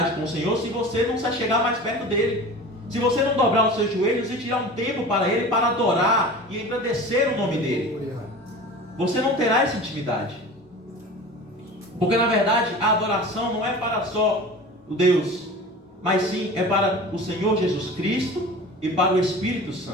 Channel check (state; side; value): normal; both; correlation 0.37